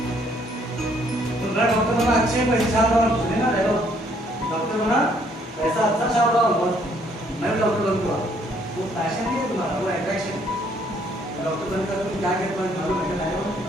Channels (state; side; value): normal; both; correlation 0.66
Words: तो डॉक्टर बना, अच्छे पैसे छाप रहा हूँ, सुने ना डॉक्टर बना, पैसा अच्छा छाप रहा हूँ, मैं डॉक्टर बनूंगा, वो पैशन नहीं है तुम्हारा, वो अट्रैक्शन।